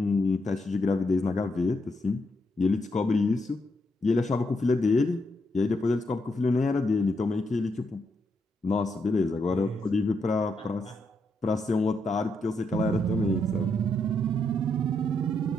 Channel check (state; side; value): normal; both; correlation 0.80